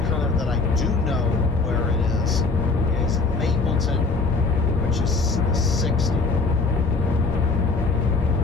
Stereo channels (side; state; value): right; quieter; 4.0 dB